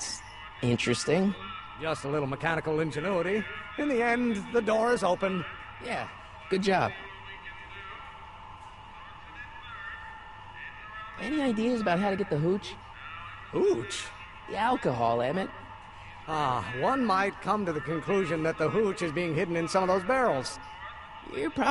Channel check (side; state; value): both; identical; correlation 1.00